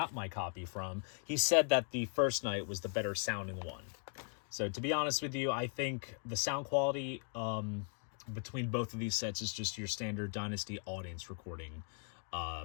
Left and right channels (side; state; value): right; silent; 52 dB below the other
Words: my copy from, he said that the first night was the better sounding one. So, to be honest with you, I think the sound quality between both of these sets is just your standard Dynasty audience recording